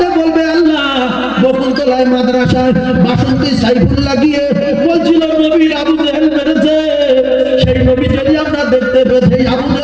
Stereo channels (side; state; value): right; noise; hum, 22 dB below the sound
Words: বলবে আল্লাহ, বকুলতলায় মাদ্রাসায় বাসন্তী সাইফুল্লাহ গিয়ে বলছিল নবীর আবু জাহেল মেরেছে, সেই নবী যদি আমরা দেখতে পেতে, আবু